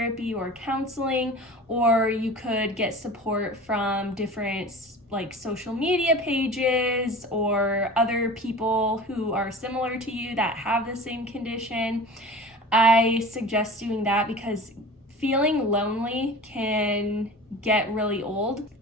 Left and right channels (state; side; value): normal; both; correlation 0.37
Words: or counseling, or you could get support from different social media pages or other people who are similar to you that have the same condition. I suggest doing that because feeling lonely can get really old,